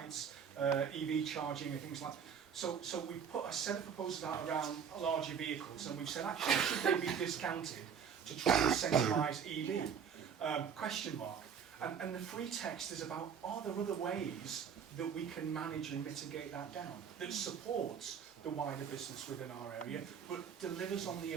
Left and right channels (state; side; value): quieter; left; 7.3 dB